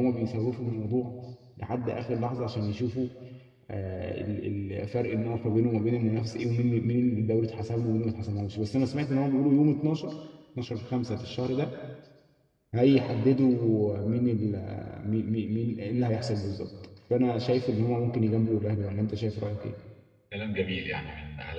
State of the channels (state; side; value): identical; both; correlation 1.00